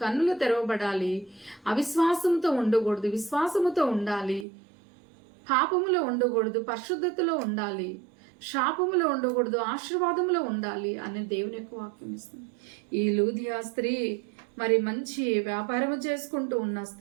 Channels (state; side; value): drops out; left; at 4.5 s